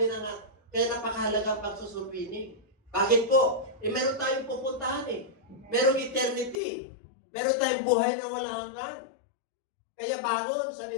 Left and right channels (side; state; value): right; drops out; at 6.6 s